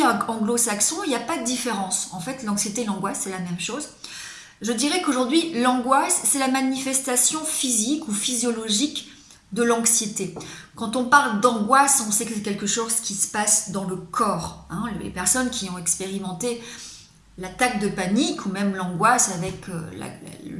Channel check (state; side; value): identical; both; correlation 1.00